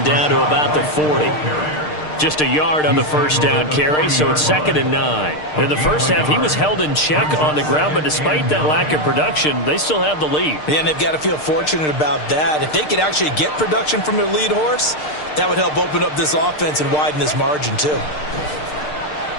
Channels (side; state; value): right; late; 6.6 ms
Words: down to about the 40. Just a yard on the 1st down carry, so it's 2nd and 9. In the first half, he was held in check on the ground, but despite that lack of production, they still have the lead. Yeah, and they've got to feel fortunate about that. If they could actually get production from their lead horse, that would help open up this offense and widen this margin, too.